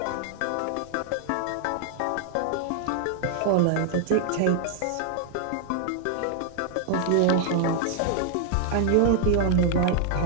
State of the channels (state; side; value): different; both; correlation -0.01